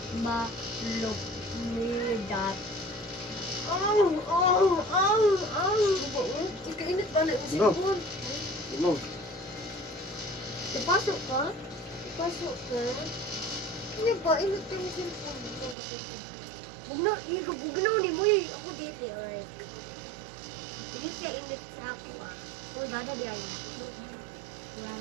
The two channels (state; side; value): drops out; left; at 15.8 s